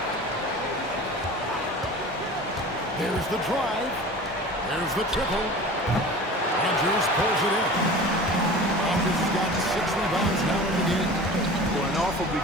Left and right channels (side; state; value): both; normal; correlation 0.38